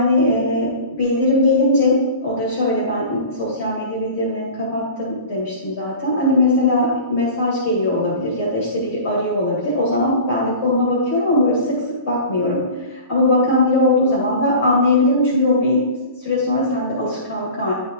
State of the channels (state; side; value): inverted; both; correlation -0.38